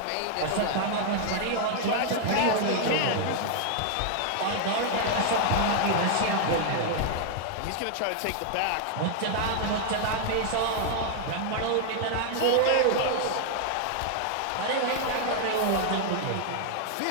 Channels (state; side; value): different; both; correlation 0.00